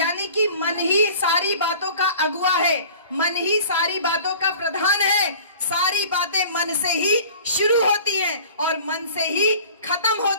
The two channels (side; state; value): both; inverted; correlation -0.45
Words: कि मन ही सारी बातों का अगुआ है, मन ही सारी बातों का प्रधान है। सारी बातें मन से ही शुरू होती हैं और मन से ही खत्म